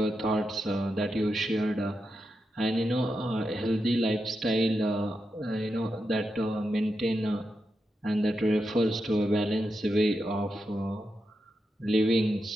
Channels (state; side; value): normal; both; correlation 0.87